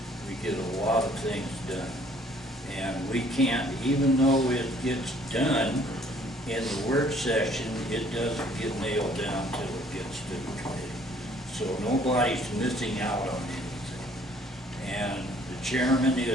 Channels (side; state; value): both; normal; correlation 0.59